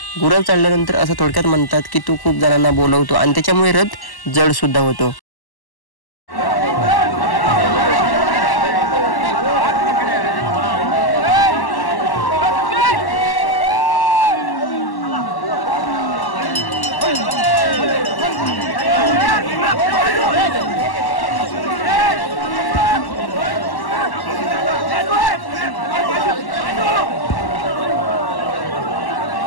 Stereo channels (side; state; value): right; late; 1.1 ms